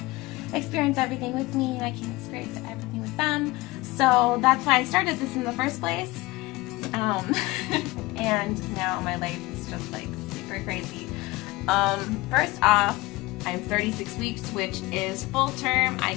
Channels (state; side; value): quieter; right; 21.0 dB